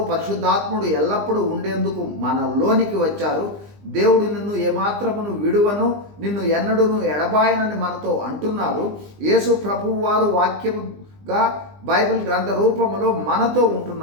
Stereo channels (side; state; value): left; late; 20 ms